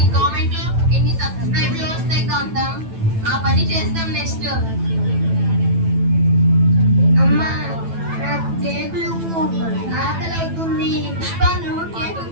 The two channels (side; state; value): left; late; 9.1 ms